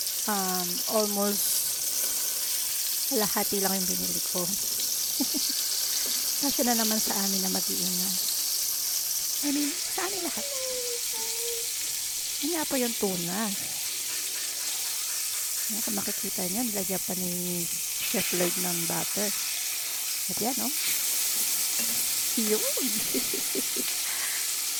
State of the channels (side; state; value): both; identical; correlation 1.00